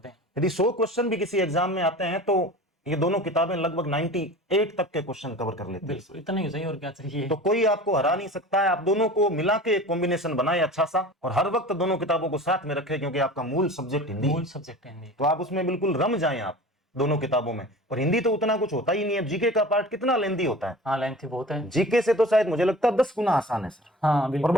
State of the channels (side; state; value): both; normal; correlation 0.38